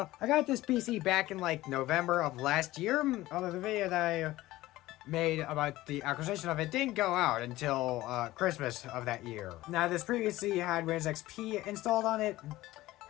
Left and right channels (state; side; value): quieter; right; 17.1 dB